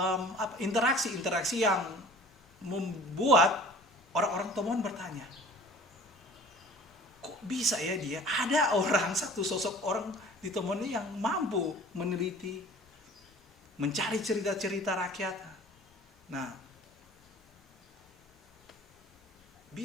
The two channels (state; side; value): normal; both; correlation 0.47